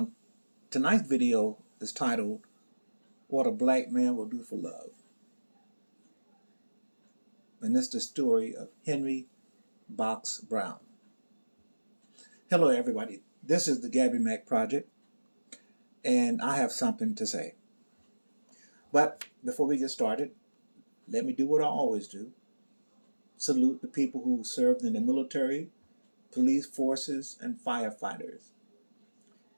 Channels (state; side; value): inverted; both; correlation -1.00